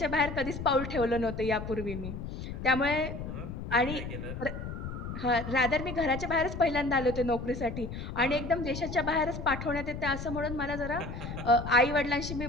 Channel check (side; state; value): left; noise; rumble, 7 dB below the sound